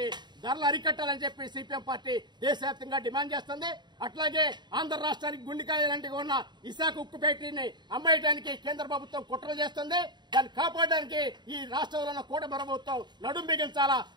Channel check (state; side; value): late; left; 0.21 ms